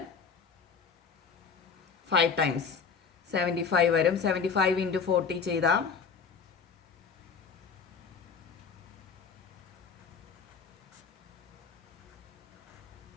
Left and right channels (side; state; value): right; quieter; 5.9 dB